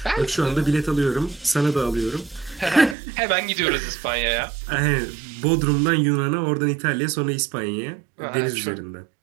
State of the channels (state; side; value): drops out; left; at 3.0 s